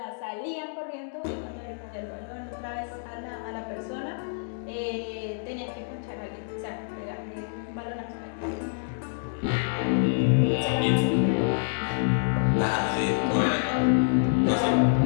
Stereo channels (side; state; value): right; silent; digital silence